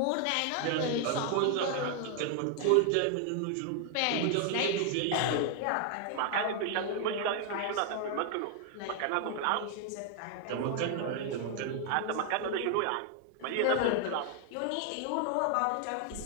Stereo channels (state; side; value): different; both; correlation 0.00